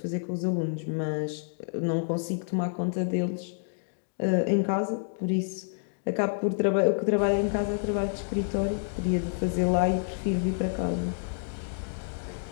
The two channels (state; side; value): silent; right; digital silence